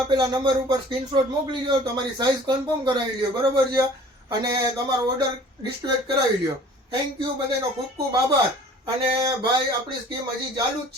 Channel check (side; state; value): both; normal; correlation 0.49